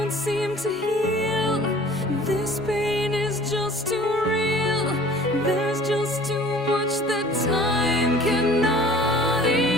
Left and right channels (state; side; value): normal; both; correlation 0.48